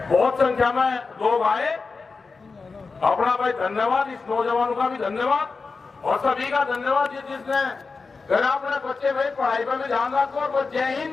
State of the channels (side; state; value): right; quieter; 4.4 dB